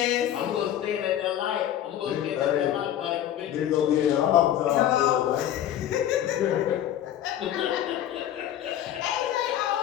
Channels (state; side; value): quieter; right; 11.4 dB